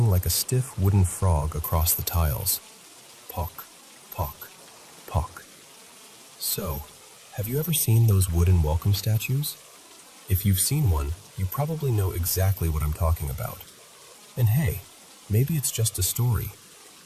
like a stiff wooden frog across the tiles. Pock, pock, pock. So, have you ever seen those wooden welcome statues? If you've seen one, you probably know exactly what I'm talking about. And hey, maybe it's just a story.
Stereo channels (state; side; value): identical; both; correlation 1.00